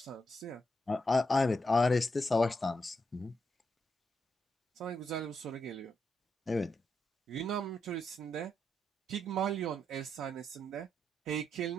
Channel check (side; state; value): both; normal; correlation 0.82